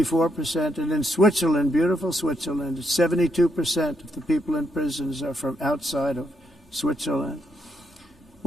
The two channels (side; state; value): both; normal; correlation 0.78